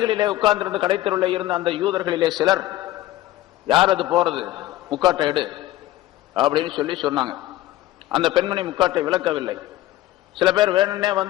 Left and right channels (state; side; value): quieter; right; 15.4 dB